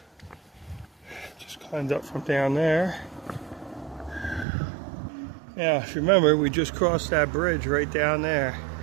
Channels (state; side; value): drops out; left; at 4.5 s